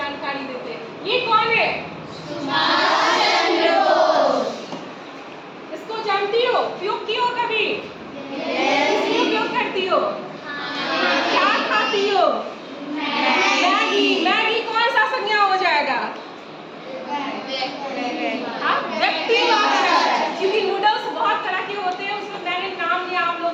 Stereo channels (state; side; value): identical; both; correlation 1.00